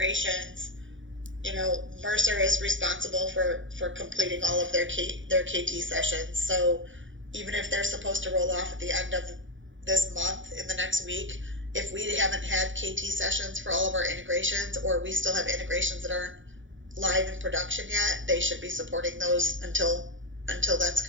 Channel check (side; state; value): left; late; 0.56 ms